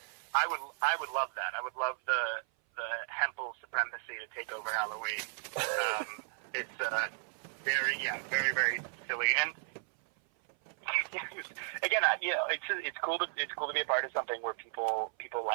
would love that. I would love the Hempel supremacy to take over Halloween. It's very, very silly. And again, it's cool to be a part of something where people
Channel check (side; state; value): left; silent; 55 dB below the other